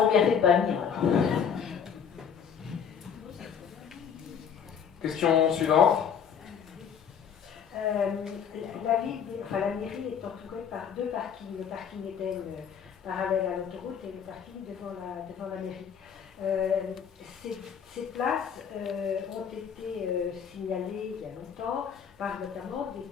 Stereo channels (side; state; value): right; quieter; 7.5 dB